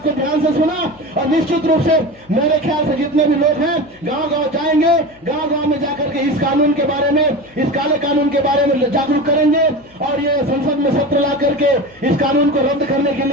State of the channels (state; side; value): noise; left; hum, 28 dB below the sound